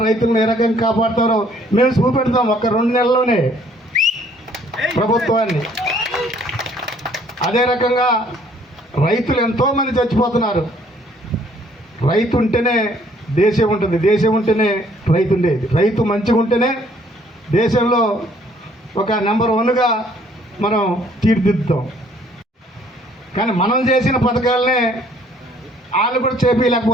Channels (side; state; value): both; normal; correlation 0.61